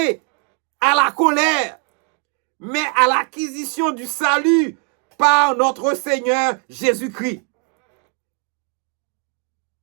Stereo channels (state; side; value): quieter; left; 35.9 dB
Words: à la colère, mais à l'acquisition du salut par notre Seigneur Jésus-Christ.